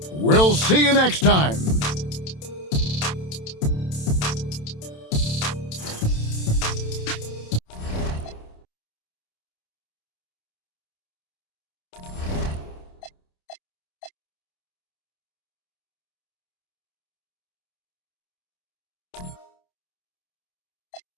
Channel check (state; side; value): late; right; 27 ms